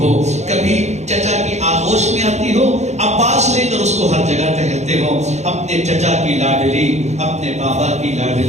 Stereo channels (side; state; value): left; late; 0.33 ms